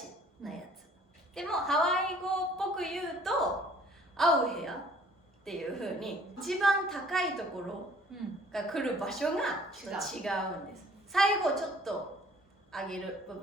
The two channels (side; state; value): both; normal; correlation 0.55